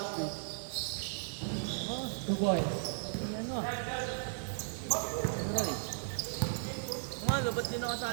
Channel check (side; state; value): left; silent; 54 dB below the other